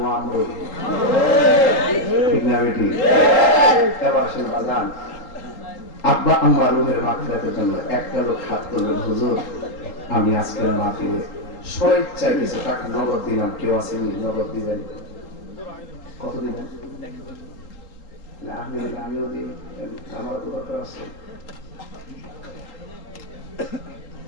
আমরাই, ঠিক না বেটি? এবার আসেন বাজান, আব্বা আম্মা রুহের মাগফিরাতের জন্য একটা লোক হাত তুলবেন। হুজুর আমি আজকের মাহফিলে স্বেচ্ছায় কিছু টাকা নগদ দিলাম, কেউ আসেনি নগদ দিবেন? কত দিবেন? আমিও দিই, আমার তো দরকার আছে।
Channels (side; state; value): right; late; 3.8 ms